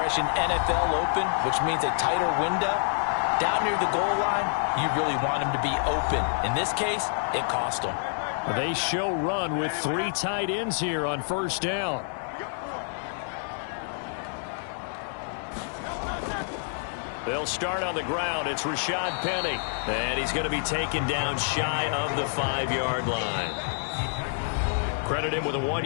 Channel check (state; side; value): silent; right; 60 dB below the other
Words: NFL open, which means a tighter window. Down near the goal line, you really want him to be open. In this case, it cost him. They show run with 3 tight ends here on first down. They'll start on the ground. It's Rashad Penny. And he's going to be taken down shy of the 5-yard line. Credit him with a